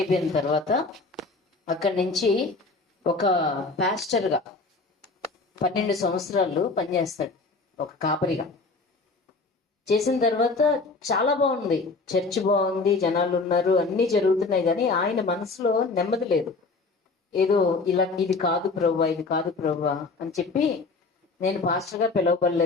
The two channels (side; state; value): right; quieter; 3.8 dB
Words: తర్వాత అక్కడి నుంచి ఒక పాస్టర్గా 12 సంవత్సరాలు పనిచేస్తాడు, ఒక కాపరిగా. చేసిన తర్వాత చాలా బాగుంది, చర్చ్ బాగుంది, జనాలు ఉన్నారు, అన్నీ జరుగుతున్నాయి. కానీ ఆయన మనసులో నెమ్మది లేదు. ఏదో ఇలా ఇది కాదు ప్రభువా, ఇది కాదు ప్రభువా అని చెప్పి నేను పాస్టర్గా